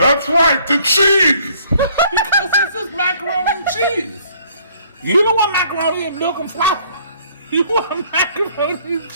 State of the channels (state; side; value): inverted; both; correlation -0.61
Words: right, the cheese! Because this is macaroni and cheese. You don't want macaroni and milk and flour. You want macaroni and